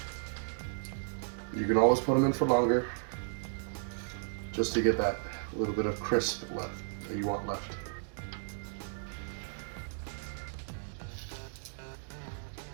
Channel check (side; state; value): left; silent; digital silence